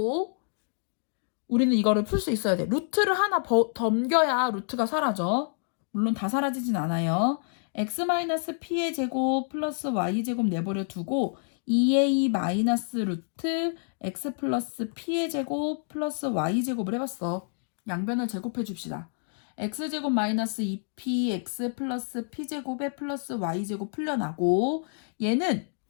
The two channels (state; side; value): silent; right; digital silence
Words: 우리는 이거를 풀 수 있어야 돼. 루트를 하나 덤겨야 루트가 사라져. 물론 다 사라지진 않아요. x-p의 제곱 플러스 y제곱 내버려 두고 2a 마이너스 루트 x 플러스 p의 제곱 플러스 y제곱을 해봤어. 양변을 제곱해 줍시다. x제곱 마이너스 2px 플러스 p제곱에 플러스 y제곱 풀려나고 얘는